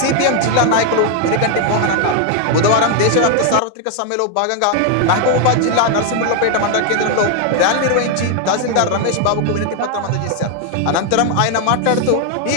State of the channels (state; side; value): different; both; correlation 0.00